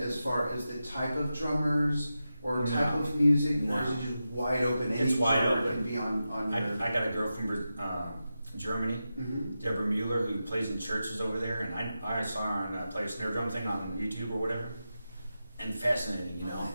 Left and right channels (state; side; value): inverted; both; correlation -0.91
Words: as far as the type of drummers or No. type of music, No. or is it just wide open? Any It's wide drummer open. can be on your. I got a girl from Germany, Mhm. Deborah Mueller, who plays in churches over there, and I saw her on play a snare drum thing on YouTube or whatever, and fascinating, you know, Oh,